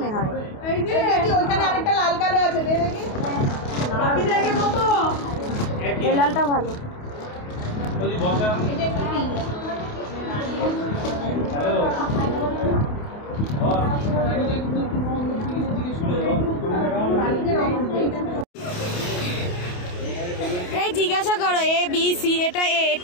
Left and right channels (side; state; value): right; late; 28 ms